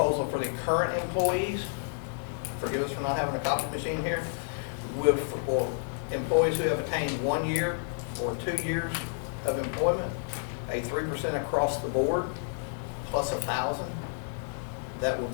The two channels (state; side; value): silent; right; 58 dB below the other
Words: for the current employees, forgive us for not having a copy machine here, for employees who have attained 1 year or 2 years of employment, a 3% across the board plus 1,000. That will